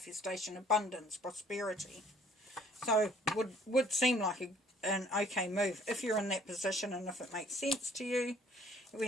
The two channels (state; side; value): normal; both; correlation 0.59